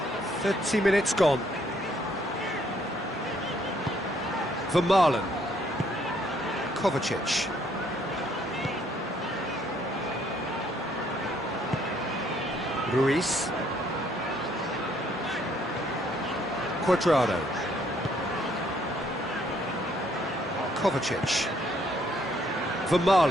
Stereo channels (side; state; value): both; normal; correlation 0.67